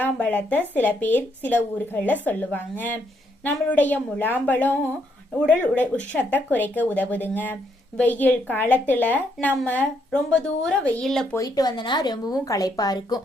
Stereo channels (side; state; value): both; normal; correlation 0.74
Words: சில பேர் சில ஊர்களில் சொல்லுவாங்க. நம்மளுடைய முலாம்பழம் உடல் உஷ்ணத்தை குறைக்க உதவுதுங்க. வெயில் காலத்துல நம்ம ரொம்ப தூரம் வெயில்ல போயிட்டு வந்தோன்னா ரொம்பவும் களைப்பா